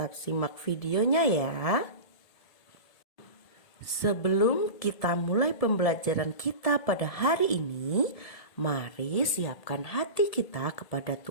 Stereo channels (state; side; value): late; right; 1.7 ms